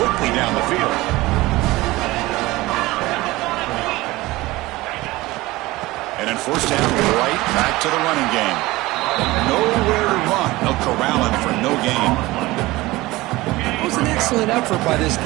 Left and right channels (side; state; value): left; quieter; 19.6 dB